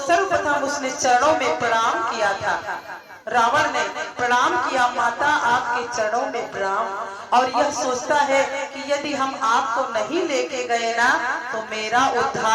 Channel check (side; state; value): both; identical; correlation 1.00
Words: उसने चरणों में प्रणाम किया था। रावण ने प्रणाम किया, माता आपके चरणों में प्रणाम। और यह सोचता है कि यदि हम आपको नहीं लेके गए ना तो मेरा